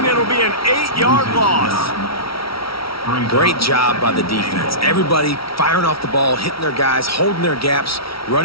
It'll be an 8-yard loss. Great job by the defense. Everybody firing off the ball, hitting their guys, holding their gaps,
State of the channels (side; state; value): right; late; 0.75 ms